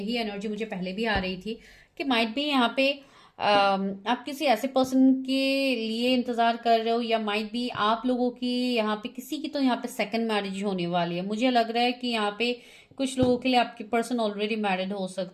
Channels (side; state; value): both; identical; correlation 1.00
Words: एनर्जी मुझे पहले भी आ रही थी कि माइट भी यहाँ पे आप किसी ऐसे पर्सन के लिए इंतजार कर रहे हो, या माइट भी आप लोगों की यहाँ पे किसी की तो यहाँ पे सेकंड मैरिज होने वाली है। मुझे लग रहा है कि यहाँ पे कुछ लोगों के लिए आपके पर्सन ऑलरेडी मैरिड हो